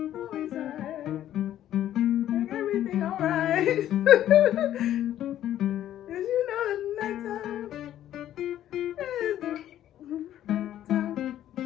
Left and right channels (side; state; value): right; quieter; 12.0 dB